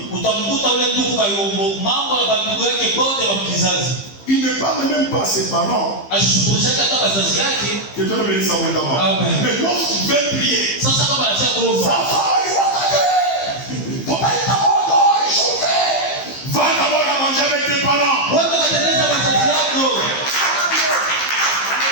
Il ne parle même pas à ses parents. Que Dieu le bénisse abondamment. Mais lorsqu'il veut prier, ça va, il va va d'abord à manger avec tes parents.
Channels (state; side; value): late; right; 15 ms